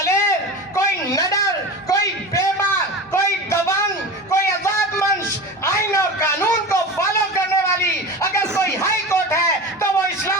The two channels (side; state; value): both; normal; correlation 0.29